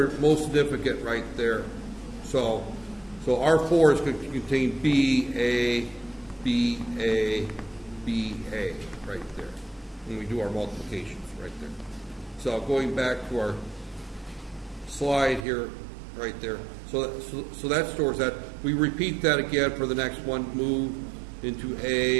most significant right there. So R4 is going to contain B, A, B, A, B, A right there when we do our multiplications right there. So going back to our slide here, right there. So that stores that. We repeat that again for the next one. Move into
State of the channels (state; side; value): drops out; left; at 15.5 s